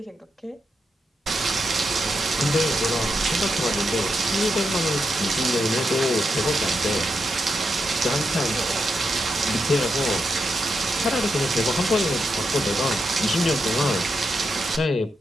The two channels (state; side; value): normal; both; correlation 0.84